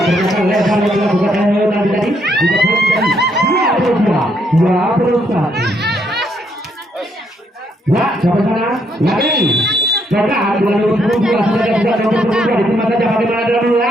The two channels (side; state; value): both; normal; correlation 0.73